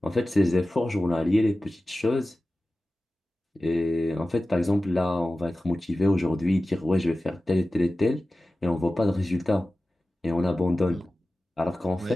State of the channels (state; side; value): normal; both; correlation 0.95